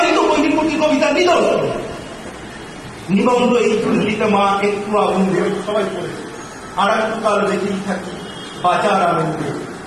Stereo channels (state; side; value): identical; both; correlation 1.00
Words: তো বৈদিক কবিতা নিদর্শন। নিবন্ধ এই চুল্লিতে মা একটু আগুন দেবে, সবাই পড়েছে, আর একটু কাল দেখেই থাকি বাজার আনন্দে।